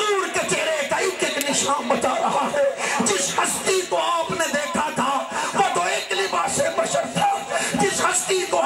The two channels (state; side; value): identical; both; correlation 1.00